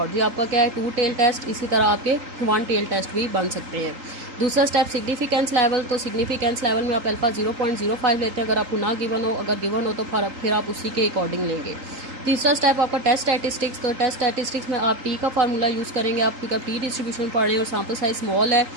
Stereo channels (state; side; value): late; left; 3.8 ms